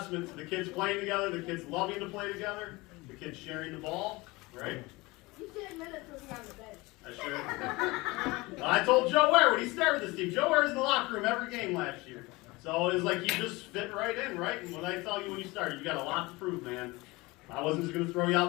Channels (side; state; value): right; quieter; 22.7 dB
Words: to the kids playing together, the kids loving to play together, the kids sharing the ball, right? You should admit it to me on the bench. I should. I told Joe Ware when he started this team. Joe Ware was in the locker room every game last year. So it was like you just fit right in, right? And when I tell you when you started, you got a lot to prove, man. I wasn't just going to throw you